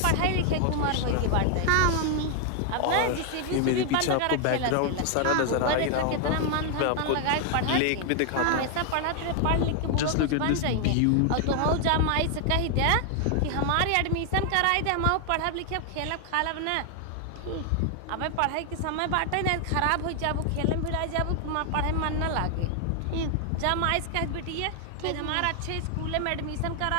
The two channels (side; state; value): both; different; correlation 0.00